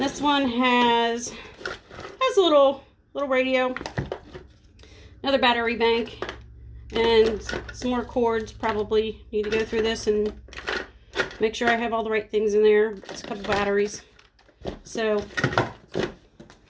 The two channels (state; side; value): identical; both; correlation 1.00